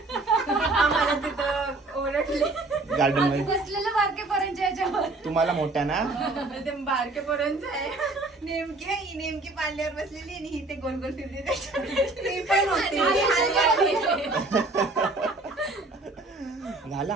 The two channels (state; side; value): quieter; left; 3.1 dB